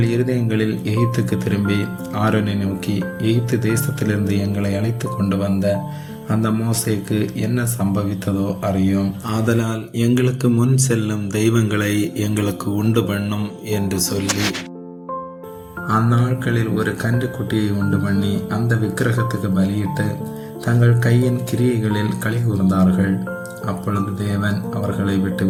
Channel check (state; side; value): identical; both; correlation 1.00